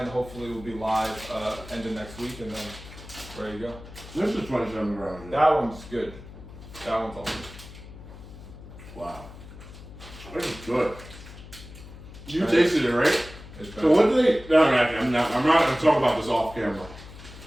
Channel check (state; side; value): noise; left; hum, 16 dB below the sound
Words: Hopefully we'll be live end of next week, and then ready to go. This is 27 grams. That one's good. That one's awesome. Wow. This is good. You tasted it, right? So what do they? No, I'm not going to talk about this off camera.